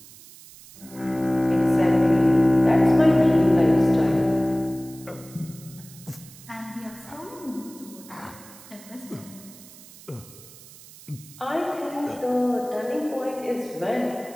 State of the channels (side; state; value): right; noise; hiss, 20 dB below the sound